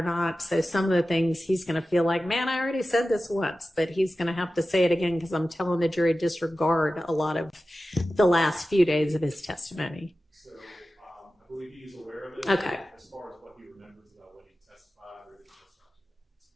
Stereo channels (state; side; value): normal; both; correlation 0.94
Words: not, so some of the things he's going to feel like, man, I already said this once, but he's going to have to say it again because I'm telling the jury disregard a lot of the last few days of his testimony. I believe he's aware of it. Okay. As far as what he remembers about when he testified or didn't